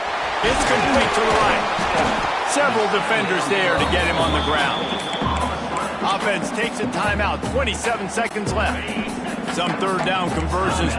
It's complete to the right. Several defenders there to get him on the ground. Offense takes a timeout. 27 seconds left. Some third down conversions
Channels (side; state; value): both; identical; correlation 1.00